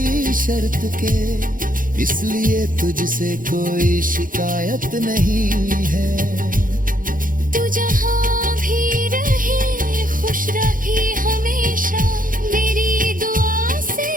शर्त के, इसलिए तुझसे कोई शिकायत नहीं है। तू जहाँ भी रहे खुश रहे हमेशा, मेरी दुआ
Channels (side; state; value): left; late; 0.40 ms